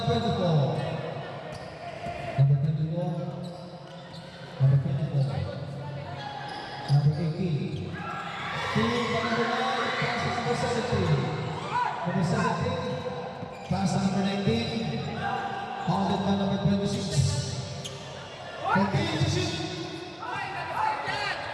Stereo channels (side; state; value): both; identical; correlation 1.00